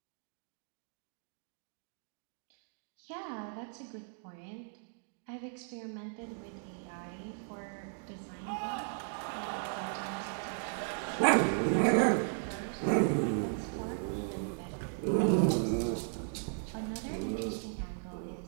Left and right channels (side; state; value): left; silent; 54 dB below the other